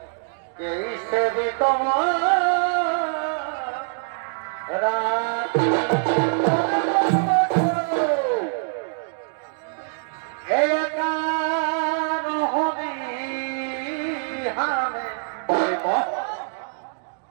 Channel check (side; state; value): left; silent; digital silence